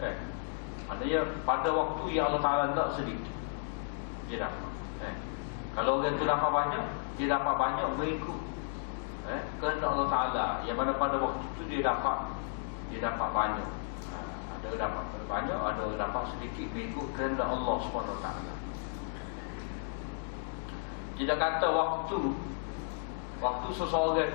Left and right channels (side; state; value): right; silent; digital silence